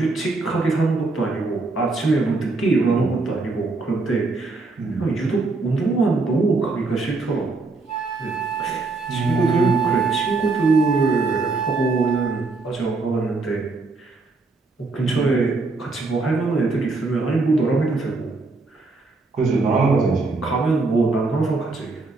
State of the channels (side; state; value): left; quieter; 3.6 dB